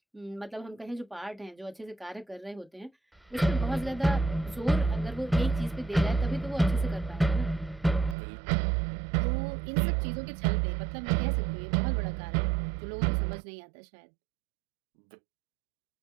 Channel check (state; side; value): drops out; left; at 8.2 s